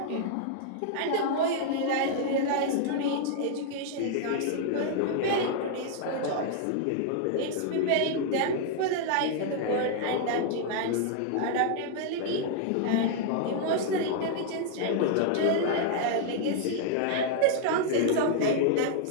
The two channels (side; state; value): both; different; correlation -0.01